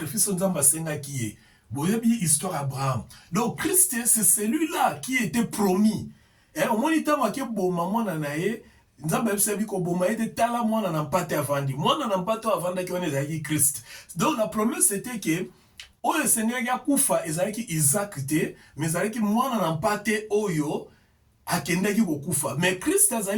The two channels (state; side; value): identical; both; correlation 1.00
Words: nzamba senga ki ye. Boyebi histoire Abraham. Donc, Christ, c'est celui-là qui était promis. Au moins, il t'a marqué boma mwana na ye, nzamba ebisebi ko boma ete tala mwana na mpate avandi. Mwana na mpate avanda ki wana ezalaki Christ. Donc, la promesse c'était que oyo Seigneur ya kufa ezalaki Isaac te, mais ezalaki mwana na mpate oyo akendaki kokufa. Mais Christ